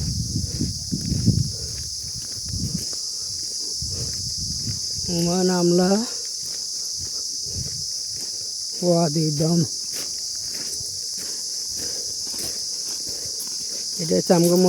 ওমান আমলা ওয়াদি দম এটা হচ্ছে আমগো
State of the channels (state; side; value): identical; both; correlation 1.00